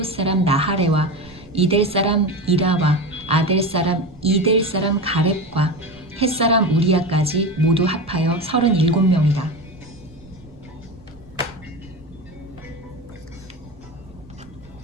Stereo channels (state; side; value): noise; right; rumble, 24 dB below the sound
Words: 사람 나하레와 이델 사람 이라와 아델 사람 이델 사람 가렙과 헷 사람 우리야까지 모두 합하여 37명이다.